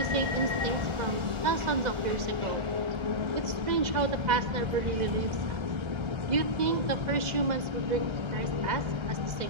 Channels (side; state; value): left; late; 2.0 ms